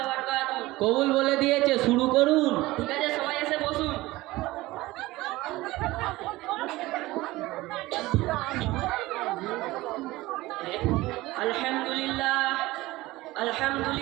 বারাকাতুহু। কবুল বলে দিয়েছে, শুরু করুন। ঠিক আছে, সবাই এসে বসুন। আলহামদুলিল্লাহ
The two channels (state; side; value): quieter; left; 18.9 dB